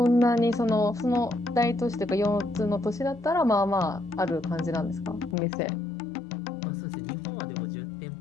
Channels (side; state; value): right; drops out; at 5.4 s